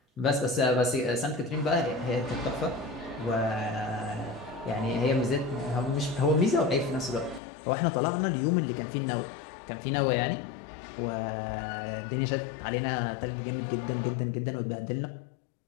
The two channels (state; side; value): drops out; right; at 7.4 s